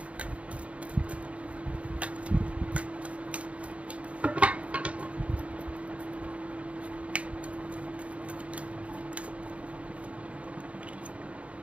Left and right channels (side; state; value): left; late; 0.065 ms